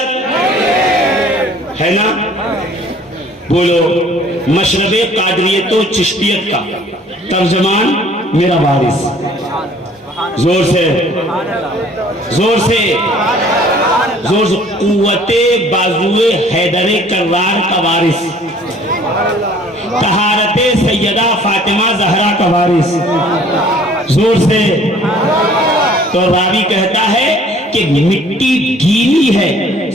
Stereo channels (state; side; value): normal; both; correlation 0.54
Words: ہے نا؟ بولو، مشرب قادریت و چشتیت کا ترجمان میرا وارث، زور سے زور سے زور سے، قوت بازوئے حیدر کرار کا وارث، طہارت سیدہ فاطمہ زہرا کا وارث، زور سے۔ تو راوی کہتا ہے کہ مٹی گیلی ہے،